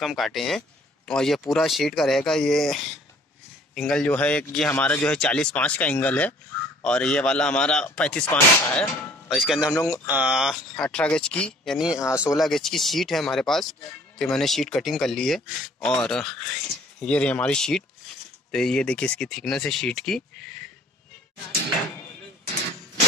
काटे हैं। और ये पूरा शीट का रहेगा। ये एंगल जो है ये हमारा जो है 40/5 का एंगल है और ये वाला हमारा 35/5 का है। और इसके अंदर हम लोग 18 गेज की यानी 16 गेज की शीट है हमारे पास। तो मैंने शीट कटिंग कर ली है और ये रही हमारी शीट। तो ये देखिए इसकी थिकनेस है शीट की।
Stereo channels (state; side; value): normal; both; correlation 0.55